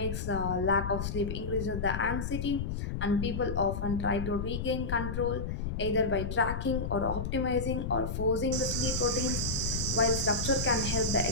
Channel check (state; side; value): noise; left; rumble, 3 dB below the sound